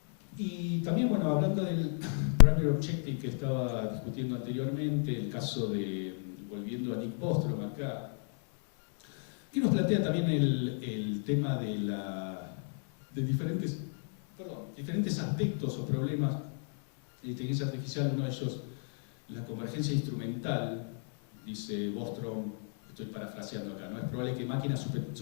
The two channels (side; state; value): right; silent; 55 dB below the other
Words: Y también, bueno, hablando del primary objective que estaba discutiendo anteriormente, el caso de, volviendo a Nick Bostrom acá, que nos plantea también el tema de diferentes aspectos o problemas de inteligencia artificial. Uno de ellos, la convergencia instrumental. Dice Bostrom, estoy parafraseando acá, ¿no? Es probable que máquinas